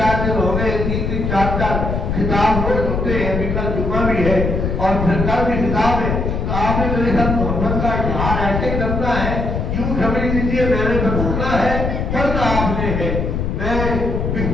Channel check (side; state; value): left; noise; rumble, 1 dB below the sound